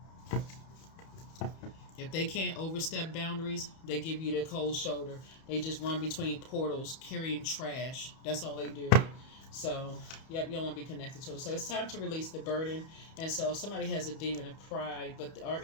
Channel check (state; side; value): late; right; 31 ms